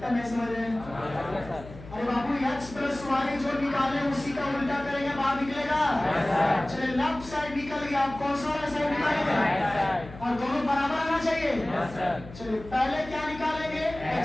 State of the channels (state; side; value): noise; left; hum, 16 dB below the sound